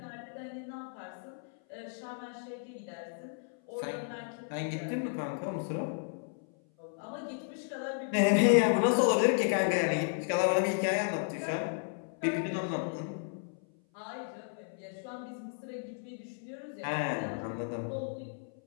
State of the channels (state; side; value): silent; right; 55 dB below the other